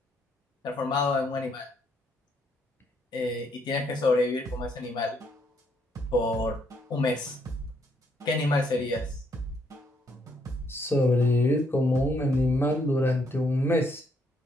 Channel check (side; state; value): both; normal; correlation 0.72